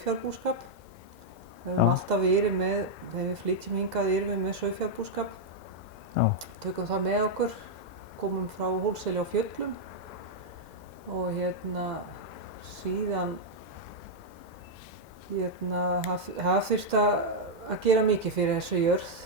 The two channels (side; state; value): left; late; 2.0 ms